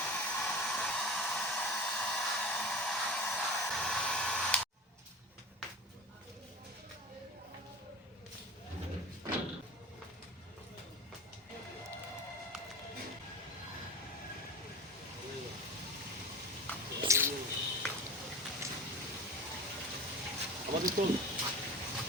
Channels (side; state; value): both; normal; correlation 0.33